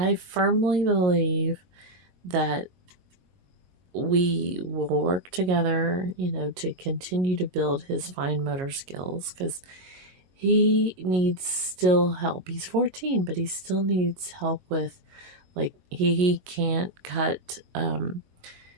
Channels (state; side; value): late; left; 22 ms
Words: firmly believe that we will work together, to continue to build his fine motor skills, because he needs still help. He's 14, but he still needs help with, like, he can't cut,